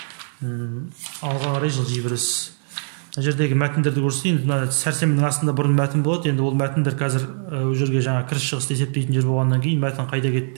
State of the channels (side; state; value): left; silent; digital silence